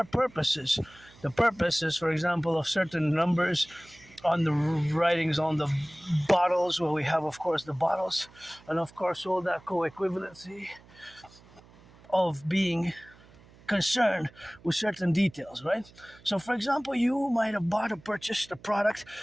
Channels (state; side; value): noise; right; hum, 25 dB below the sound